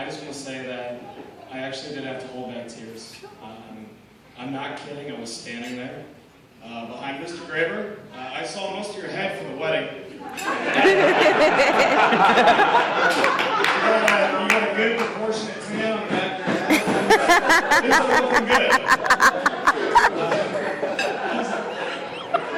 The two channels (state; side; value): identical; both; correlation 1.00